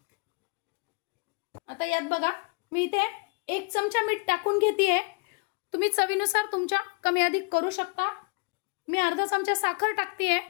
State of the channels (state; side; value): quieter; right; 32.4 dB